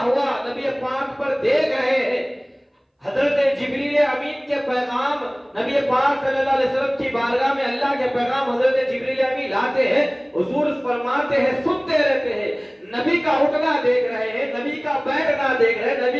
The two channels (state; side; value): identical; both; correlation 1.00